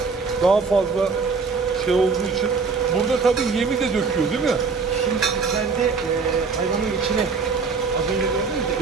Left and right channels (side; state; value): left; quieter; 4.8 dB